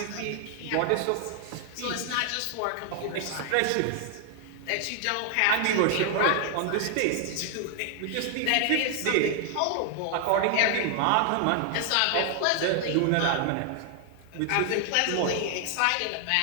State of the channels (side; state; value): both; different; correlation 0.00